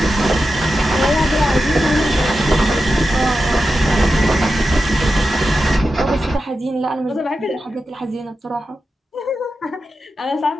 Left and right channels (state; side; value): normal; both; correlation 0.91